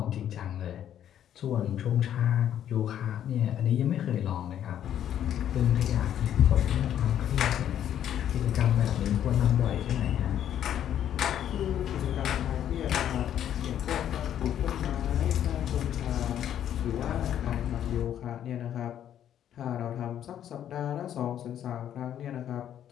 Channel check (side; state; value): right; quieter; 10.4 dB